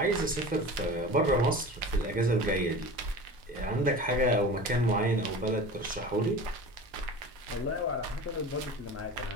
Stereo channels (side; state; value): both; normal; correlation 0.35